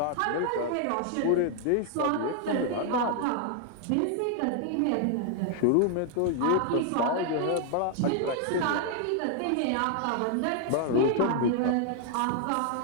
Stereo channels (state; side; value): different; both; correlation 0.00